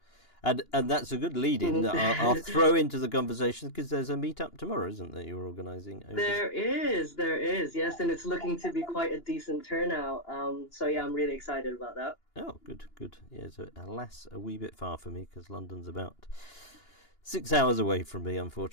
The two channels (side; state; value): right; late; 2.9 ms